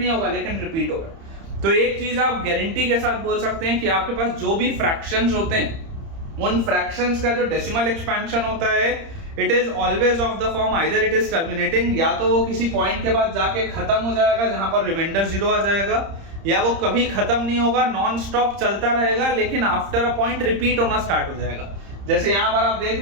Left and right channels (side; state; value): left; late; 30 ms